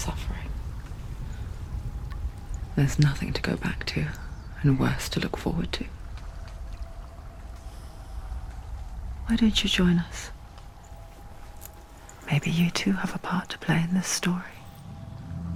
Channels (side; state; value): both; identical; correlation 1.00